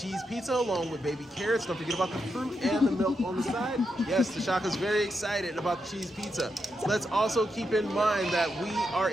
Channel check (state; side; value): normal; both; correlation 0.84